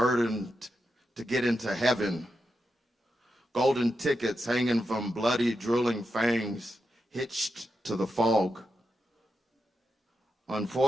to get into heaven. Golden tickets hanging from bloody, drooling fangs, hitched to the fog.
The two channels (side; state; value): both; normal; correlation 0.87